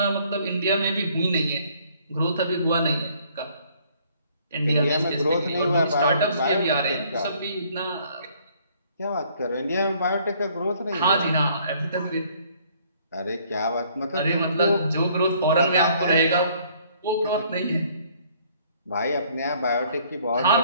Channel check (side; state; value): both; inverted; correlation -0.61